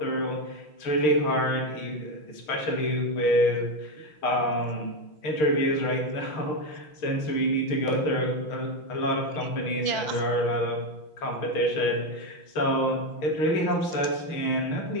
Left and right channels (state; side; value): late; right; 5.8 ms